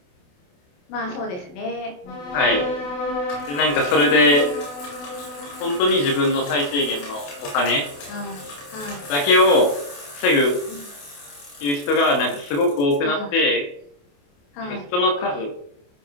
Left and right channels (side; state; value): right; late; 28 ms